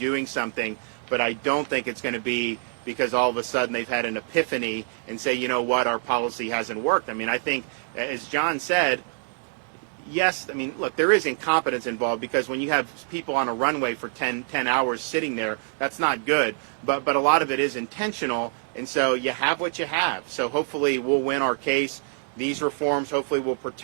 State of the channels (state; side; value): silent; left; digital silence